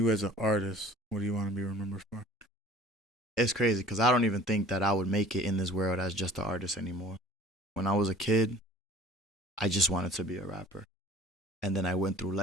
as an artist, what do you want to be remembered for? It's crazy because I don't even think that I would make it in this world as just an artist anymore. When I was a kid, I just wanted to be a rapper. And then I went through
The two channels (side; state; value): both; normal; correlation 0.47